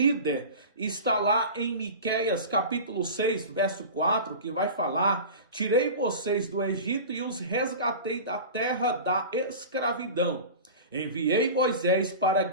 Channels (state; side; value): inverted; both; correlation -0.33